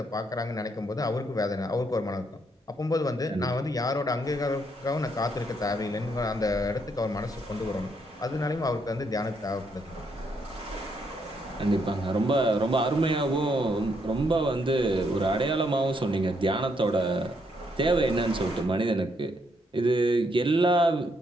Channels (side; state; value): both; normal; correlation 0.74